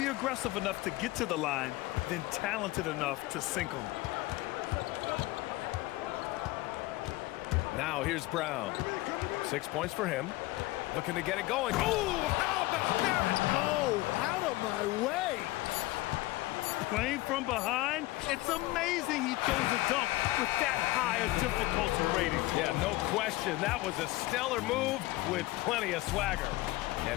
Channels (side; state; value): right; quieter; 19.2 dB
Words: aggressive enough to get to the line, then talented enough to sink them. Now here's Brown. 6 points for him. Looking to get it going. Oh, how about that? Oh, out of my way. playing from behind, it's amazing he chose a dunk with that high a difficulty rating. Yeah, no question. That was a stellar move with plenty of swagger.